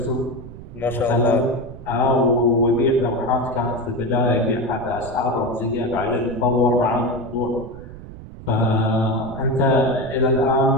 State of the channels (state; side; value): noise; right; rumble, 15 dB below the sound